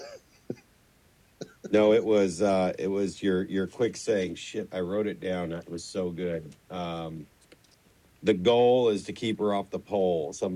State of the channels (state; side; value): identical; both; correlation 1.00